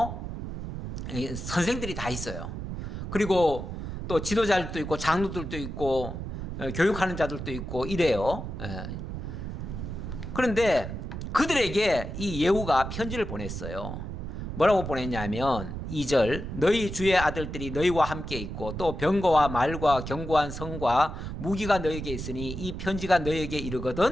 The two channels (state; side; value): noise; right; rumble, 7 dB below the sound